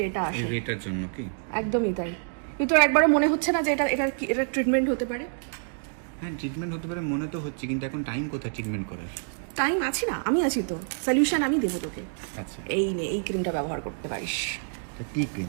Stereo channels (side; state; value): left; silent; digital silence